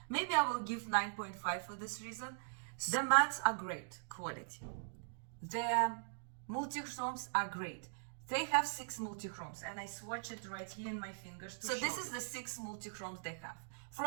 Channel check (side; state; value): left; silent; digital silence